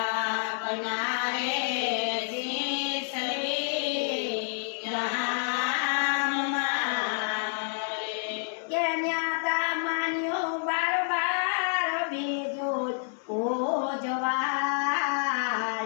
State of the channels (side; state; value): right; silent; digital silence